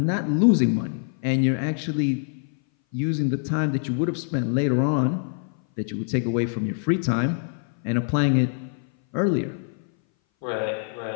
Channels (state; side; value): silent; right; 59 dB below the other